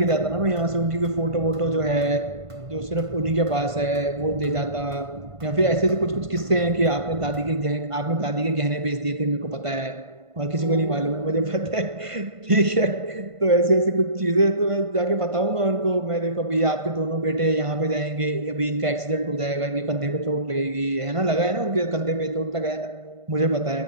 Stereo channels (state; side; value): late; left; 1.5 ms